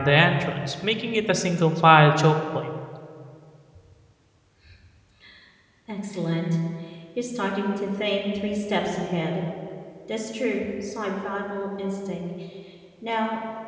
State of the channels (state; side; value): identical; both; correlation 1.00